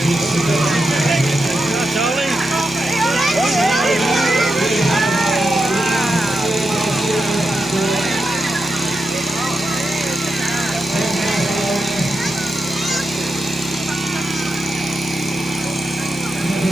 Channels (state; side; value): normal; both; correlation 0.87